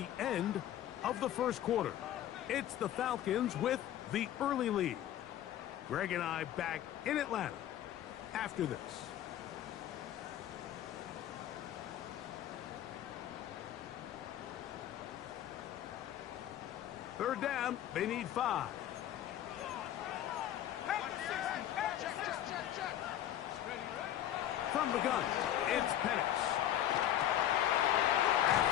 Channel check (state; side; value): quieter; right; 11.8 dB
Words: end of the 1st quarter. It's the Falcons with the early lead. Greg and I back in Atlanta after this. Third down, they need 5. From the gun, it's Penix.